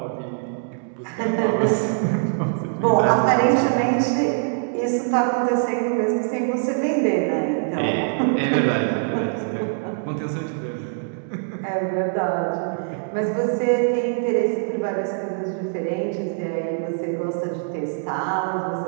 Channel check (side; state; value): left; silent; digital silence